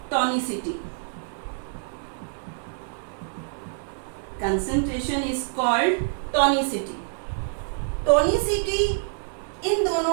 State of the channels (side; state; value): left; silent; digital silence